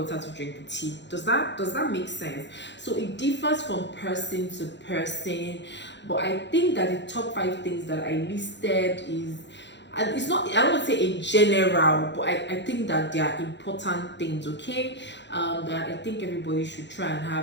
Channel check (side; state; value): right; late; 0.52 ms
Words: to drink the tea. Does that make sense? So it differs from person to person, but I think that the top 5 things that I listed is, and it's not, I don't want to say in general, but I think that they are important things, okay? That I think everybody should try and